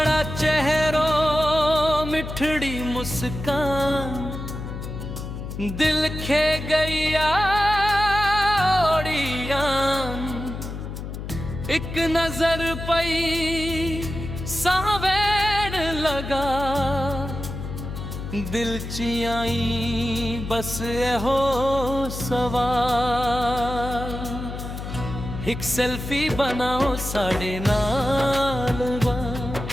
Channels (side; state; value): left; noise; hum, 7 dB below the sound